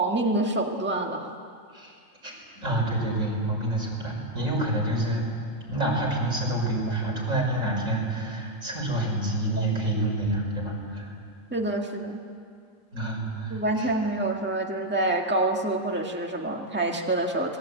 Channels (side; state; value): both; normal; correlation 0.02